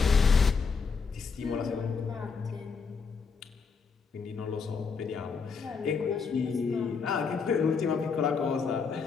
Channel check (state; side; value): quieter; right; 5.3 dB